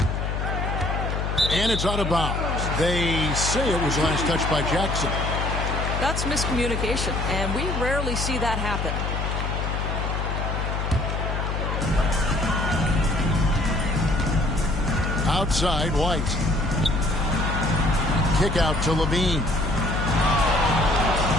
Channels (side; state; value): left; noise; hum, 2 dB below the sound